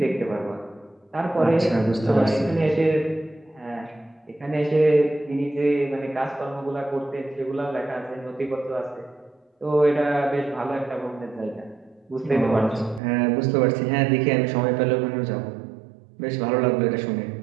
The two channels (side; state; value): left; drops out; at 13.0 s